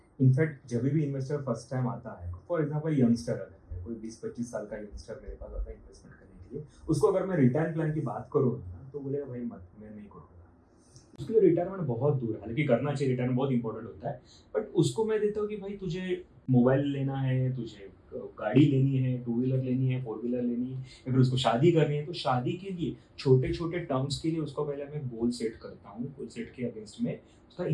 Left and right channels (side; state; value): both; identical; correlation 1.00